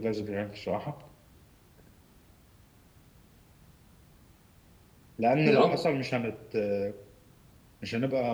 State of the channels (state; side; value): identical; both; correlation 1.00